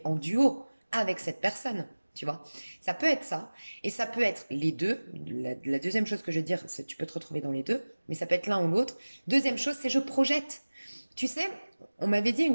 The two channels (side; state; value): both; inverted; correlation -1.00